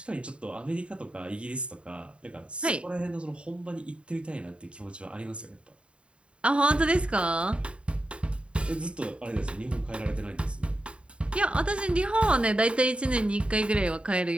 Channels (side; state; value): left; late; 0.057 ms